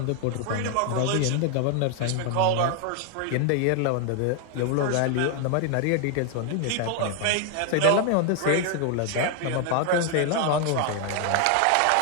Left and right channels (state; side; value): different; both; correlation 0.00